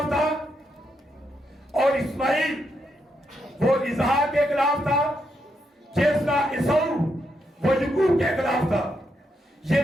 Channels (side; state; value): both; normal; correlation 0.80